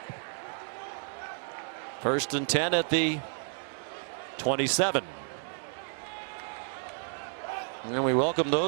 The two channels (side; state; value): left; silent; 56 dB below the other